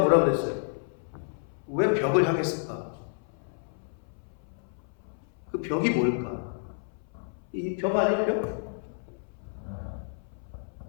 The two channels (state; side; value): silent; right; 58 dB below the other